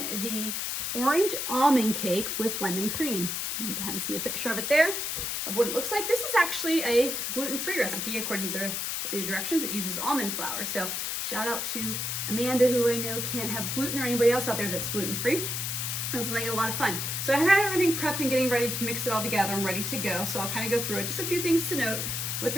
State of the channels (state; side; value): noise; left; hiss, 2 dB below the sound